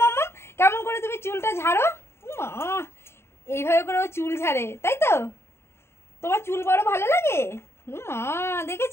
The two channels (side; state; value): right; late; 0.12 ms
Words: মাম্মাম কেমন করে তুমি চুলটা ঝাড়ো? এইভাবে করে ও চুল ঝাড়ে, তাই তো? তোমার চুল বড় ভালো লাগে?